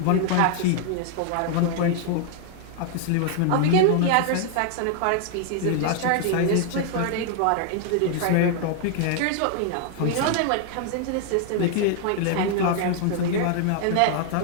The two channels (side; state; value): both; different; correlation 0.00